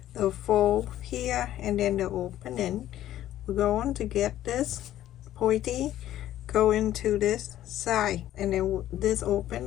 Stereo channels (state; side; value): quieter; right; 12.9 dB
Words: the fold here and then the opening. We're going to get this pointy go into this side, and then this